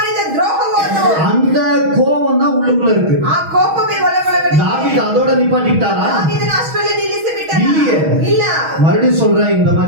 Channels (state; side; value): late; left; 6.3 ms